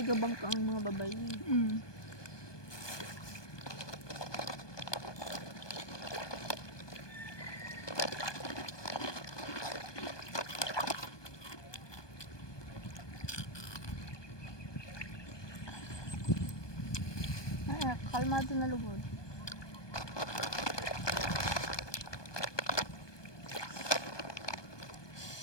ang mga babae niya. Ay, kalmado na lubod.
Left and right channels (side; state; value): right; late; 1.2 ms